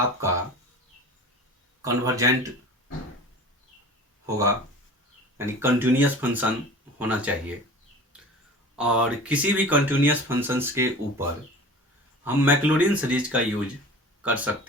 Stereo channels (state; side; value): normal; both; correlation 0.39